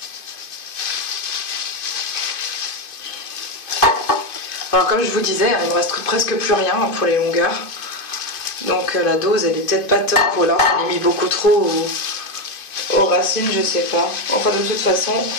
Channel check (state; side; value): late; right; 2.5 ms